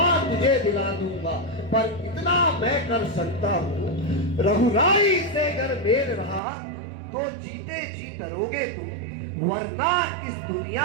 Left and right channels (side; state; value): left; drops out; at 6.4 s